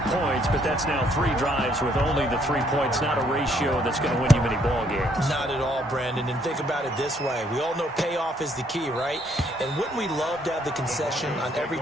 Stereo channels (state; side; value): normal; both; correlation 0.68